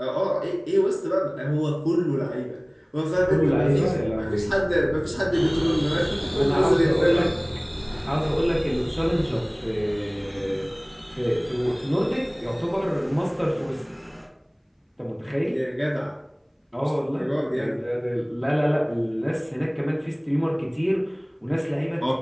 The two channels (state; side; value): identical; both; correlation 1.00